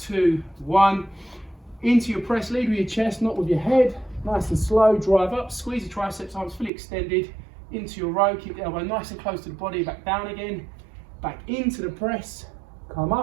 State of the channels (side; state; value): left; drops out; at 6.7 s